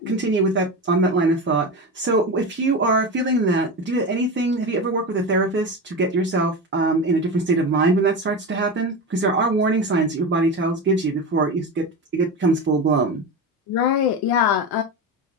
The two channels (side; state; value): both; normal; correlation 0.22